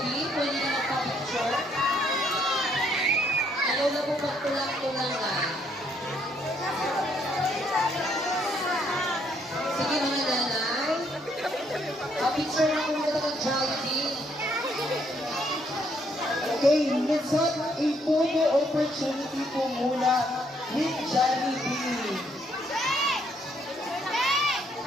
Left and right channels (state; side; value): normal; both; correlation 0.70